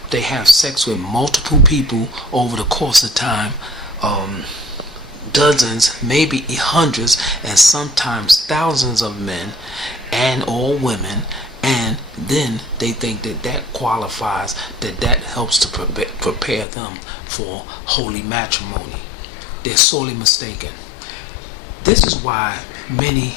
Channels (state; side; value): drops out; right; at 16.7 s